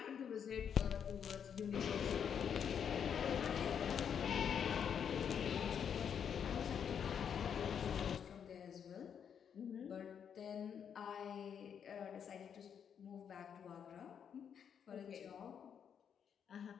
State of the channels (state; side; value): quieter; right; 7.8 dB